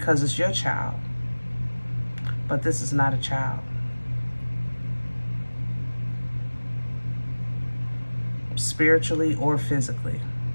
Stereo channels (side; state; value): both; inverted; correlation -1.00